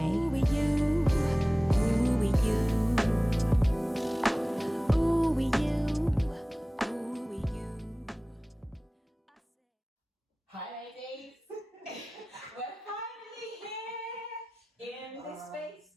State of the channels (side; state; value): both; normal; correlation 0.98